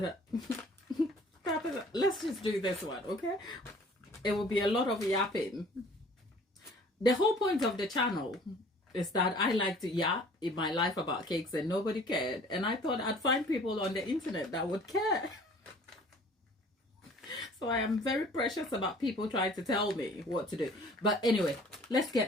Tabitha. Let's just do this one, okay? It will be a lot of yapping. The whole point of the channel is that I like to yap in my life about cakes and nobody cared. And I thought I'd find people on the internet that would care. So I am very precious about people trying to tell me what to do. But anyway, let's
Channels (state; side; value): normal; both; correlation 0.51